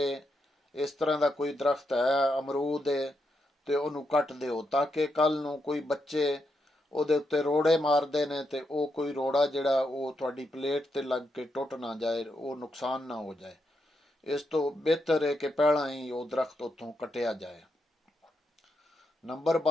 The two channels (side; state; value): both; normal; correlation 0.82